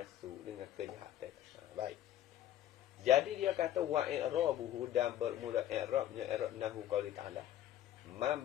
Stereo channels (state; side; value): quieter; right; 12.2 dB